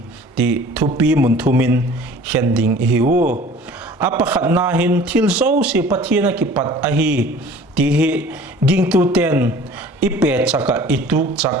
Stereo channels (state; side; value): normal; both; correlation 0.47